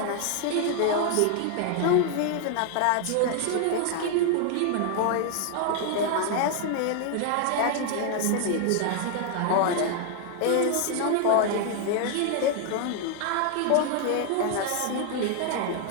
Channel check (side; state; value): both; different; correlation 0.00